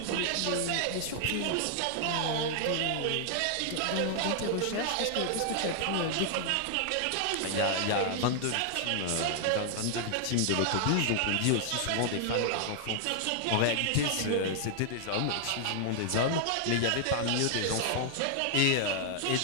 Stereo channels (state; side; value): different; both; correlation 0.00